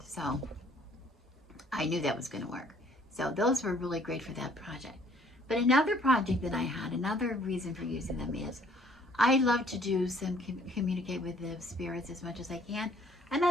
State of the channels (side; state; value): both; normal; correlation 0.60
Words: So I knew that was going to work. So those were really great for that project. But another project that I had, another reason for using them is I love to do communicate with the spirits as much as I can. And